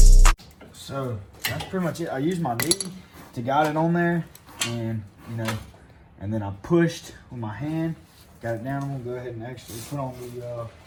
So that's pretty much it. I used my knee to guide it on there, and you know, and then I pushed with my hand, got it down. I'm gonna go ahead and actually put on the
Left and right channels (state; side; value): identical; both; correlation 1.00